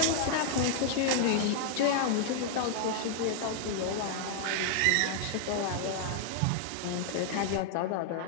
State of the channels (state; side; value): different; both; correlation 0.00